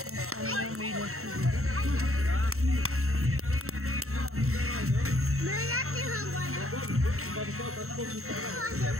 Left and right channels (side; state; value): left; late; 0.63 ms